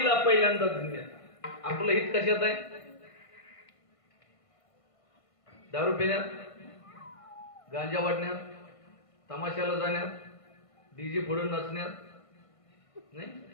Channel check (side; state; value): right; late; 1.5 ms